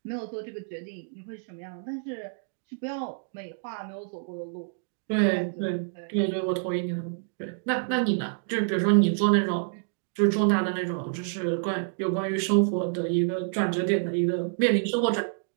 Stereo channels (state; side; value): silent; left; digital silence